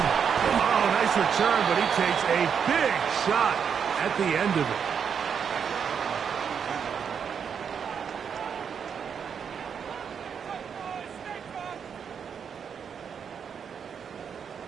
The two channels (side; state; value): left; quieter; 7.1 dB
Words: Oh, nice return, but he takes a big shot at the end of it.